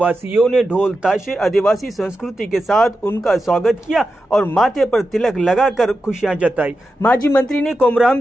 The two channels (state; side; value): normal; both; correlation 0.90